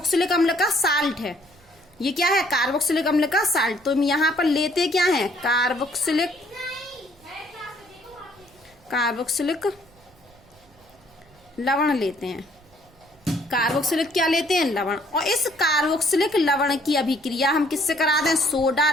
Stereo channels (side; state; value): right; noise; rumble, 29 dB below the sound